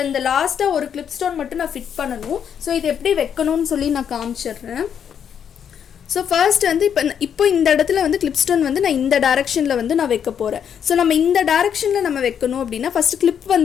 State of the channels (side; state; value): right; quieter; 8.2 dB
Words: இந்த லாஸ்ட்டாக ஒரு கிளிப் ஸ்டோன் மட்டும் நான் ஃபிட் பண்ணணும். ஸோ இது எப்படி வைக்கணும்னு சொல்லி நான் காமிச்சிடுறேன். ஸோ ஃபர்ஸ்ட் வந்து இப்போ இந்த இடத்துல வந்து கிளிப் ஸ்டோன் வந்து நான் இந்த டைரக்ஷனில் வந்து நான் வைக்க போகிறேன். ஸோ நம்ம இந்த டைரக்ஷனில் நம்ம வைக்கணும் அப்படின்னா ஃபஸ்ட்டு கிளிப்